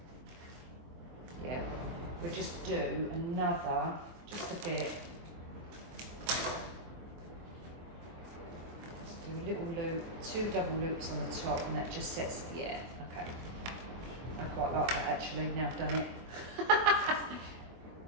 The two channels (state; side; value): late; left; 24 ms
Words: Yeah. We'll just do another, just a bit. Just do a little loop, 2 double loops on the top, and that just sets, yeah, okay. I quite like that actually, now I've done it.